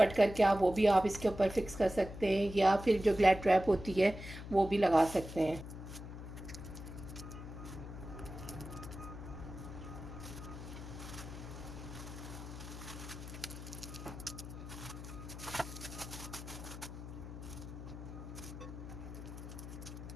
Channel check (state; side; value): noise; left; hum, 10 dB below the sound